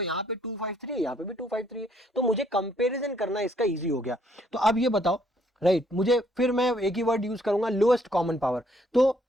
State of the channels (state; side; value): normal; both; correlation 0.67